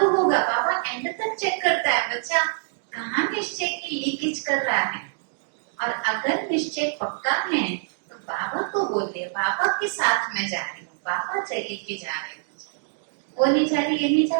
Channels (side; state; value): left; silent; digital silence